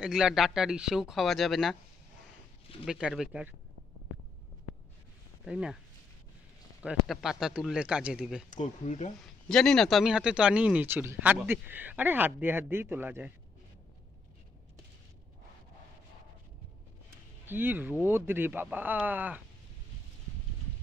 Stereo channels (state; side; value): quieter; right; 3.8 dB